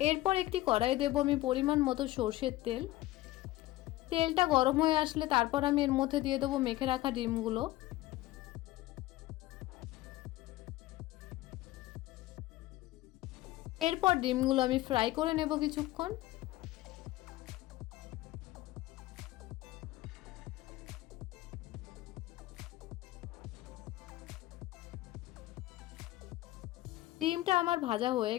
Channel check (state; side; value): quieter; right; 17.0 dB